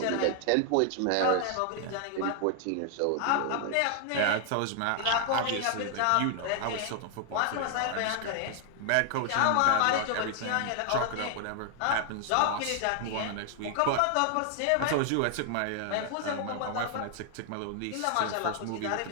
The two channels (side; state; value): both; different; correlation 0.00